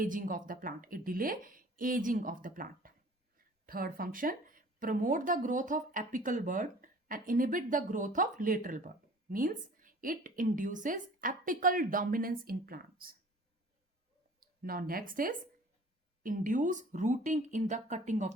of the plant. It delay aging of the plant. Third function, promote the growth of apical bud and inhibit the growth of lateral bud, means it induces apical dominance in plants. Now next is induce rooting in the cutting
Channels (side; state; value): both; normal; correlation 0.48